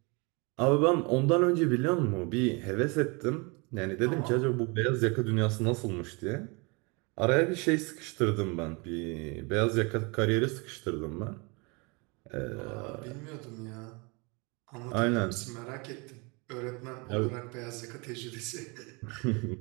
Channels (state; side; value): quieter; left; 29.5 dB